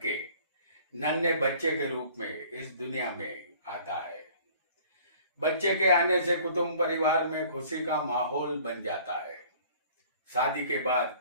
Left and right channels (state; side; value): inverted; both; correlation -0.52